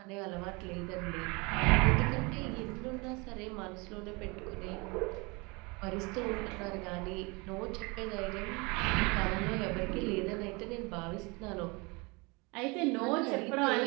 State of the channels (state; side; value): quieter; left; 27.6 dB